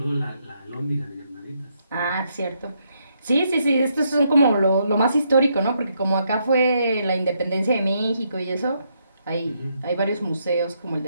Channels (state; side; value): inverted; both; correlation -0.76